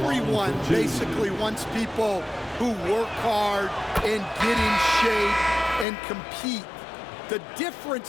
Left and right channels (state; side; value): drops out; right; at 5.9 s